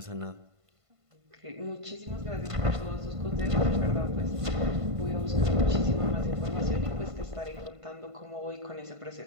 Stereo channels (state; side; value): late; left; 1.5 ms